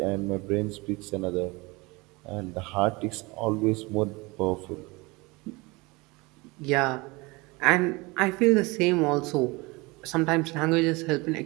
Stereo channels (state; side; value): quieter; left; 24.6 dB